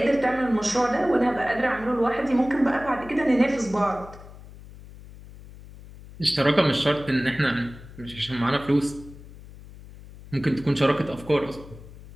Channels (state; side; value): noise; left; hum, 18 dB below the sound